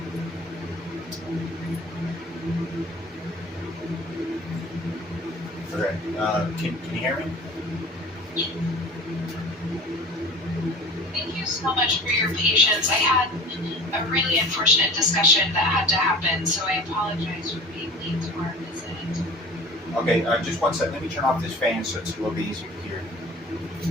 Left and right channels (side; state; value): both; normal; correlation 0.40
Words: Okay. Can you hear me? Thank you so much for your patience. I had a really unfortunate discussion that had to happen, so I apologize for being late to our visit. Okay, just 1 second. Let me turn off this fan so it's a little bit easier to hear.